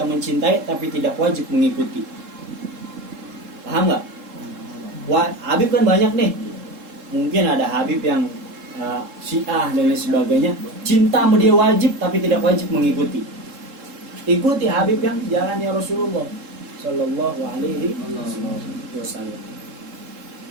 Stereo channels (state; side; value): late; left; 3.7 ms